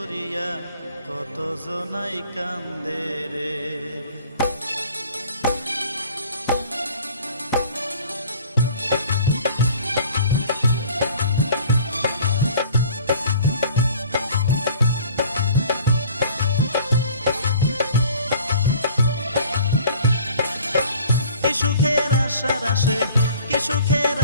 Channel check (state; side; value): inverted; both; correlation -0.50